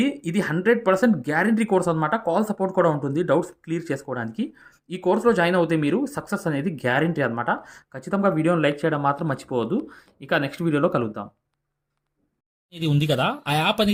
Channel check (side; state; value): both; identical; correlation 1.00